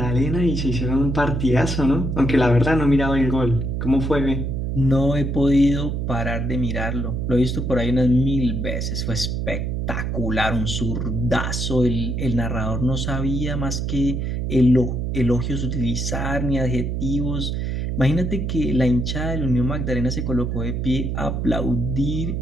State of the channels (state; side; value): noise; right; hum, 1 dB below the sound